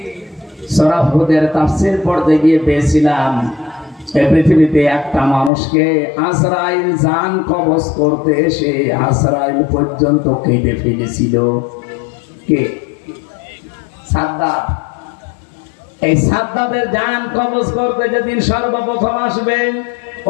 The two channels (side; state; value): right; drops out; at 5.5 s